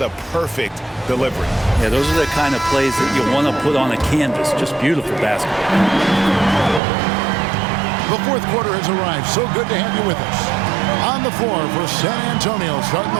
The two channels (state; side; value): drops out; left; at 6.8 s